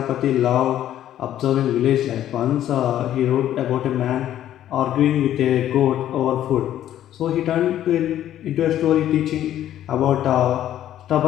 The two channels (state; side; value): quieter; right; 11.8 dB